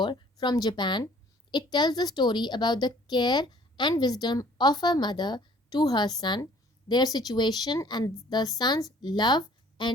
from Japan. It tells the story about the care and wisdom of a mother to her son, their situation, and the son's love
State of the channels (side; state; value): both; normal; correlation 0.55